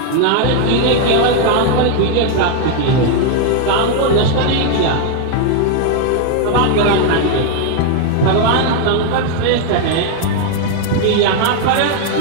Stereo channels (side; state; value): both; different; correlation 0.00